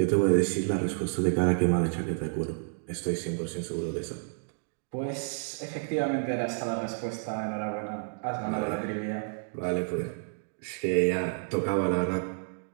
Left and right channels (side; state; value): left; silent; digital silence